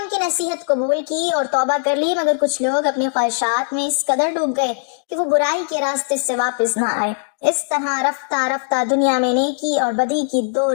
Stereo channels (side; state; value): right; silent; digital silence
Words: کی نصیحت قبول کی اور توبہ کر لی، مگر کچھ لوگ اپنی خواہشات میں اس قدر ڈوب گئے کہ وہ برائی کے راستے سے واپس نہ آئے۔ اس طرح رفتہ رفتہ دنیا میں نیکی اور بدی کی دو